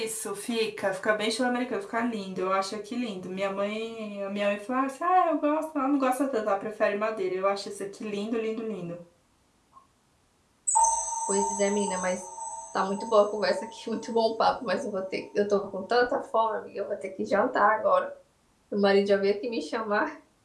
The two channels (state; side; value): identical; both; correlation 1.00